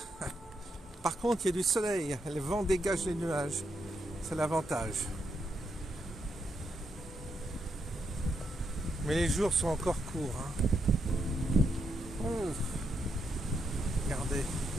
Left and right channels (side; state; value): both; normal; correlation 0.80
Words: Par contre, il y a du soleil, le vent dégage les nuages. C'est l'avantage. Mais les jours sont encore courts. Hein. Oh. Regardez.